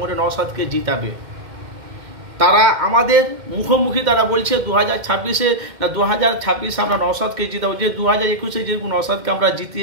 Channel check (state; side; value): late; left; 2.1 ms